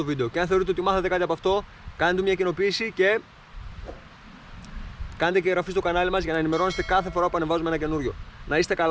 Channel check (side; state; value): both; identical; correlation 1.00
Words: βίντεο και αν θεωρείτε ότι μάθατε κάτι από αυτό, κάντε μια κοινοποίηση και κάντε και εγγραφή στο κανάλι μας για να ενημερώνεστε κάθε φορά που ανεβάζουμε ένα καινούριο. Να είστε